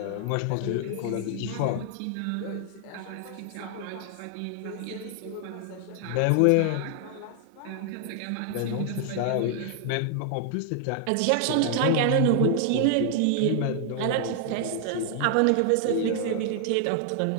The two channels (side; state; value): both; different; correlation 0.00